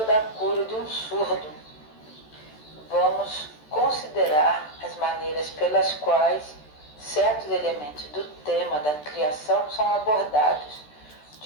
cura de um surdo. Vamos considerar as maneiras pelas quais certos elementos do tema da criação são abordados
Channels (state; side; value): late; right; 13 ms